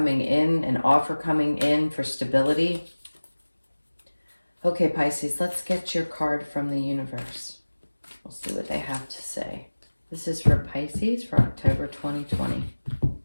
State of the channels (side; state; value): both; inverted; correlation -1.00